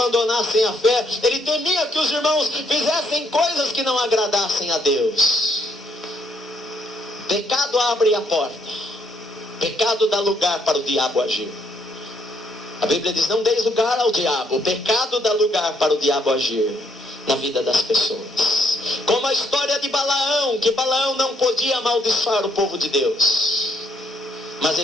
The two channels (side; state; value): both; normal; correlation 0.71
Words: a fé, ele temia que os irmãos fizessem coisas que não agradassem a Deus. Pecado abre a porta. Pecado dá lugar para o diabo agir. A Bíblia diz: não deis lugar ao diabo. O pecado dá lugar para o diabo agir na vida das pessoas. Como a história de Balaão, que Balaão não podia amaldiçoar o povo de Deus, mas